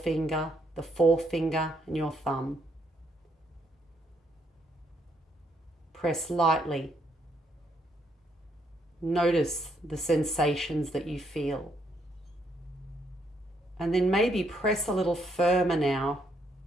and your thumb. Press lightly. Notice the sensations that you feel. And then maybe press a little firmer now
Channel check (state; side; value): normal; both; correlation 0.74